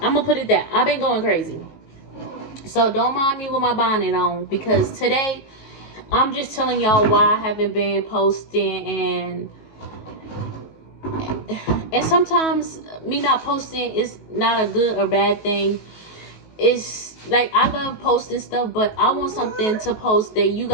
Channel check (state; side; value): late; right; 19 ms